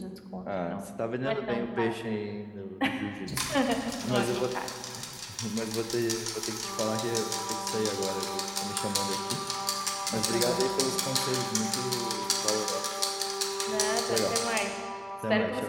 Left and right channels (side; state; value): both; identical; correlation 1.00